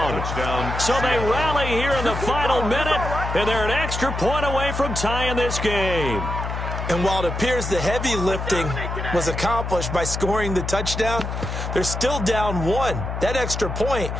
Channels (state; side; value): noise; left; hum, 4 dB below the sound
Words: So they rally here in the final minute, and they're an extra point away from tying this game. And while it appears the heavy lifting was accomplished by scoring the touchdown, they're still down 1. That extra point